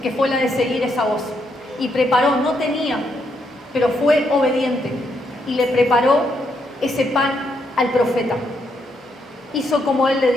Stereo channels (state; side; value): normal; both; correlation 0.77